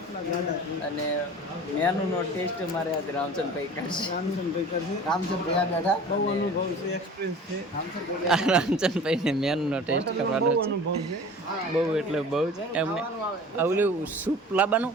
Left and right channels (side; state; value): both; normal; correlation 0.41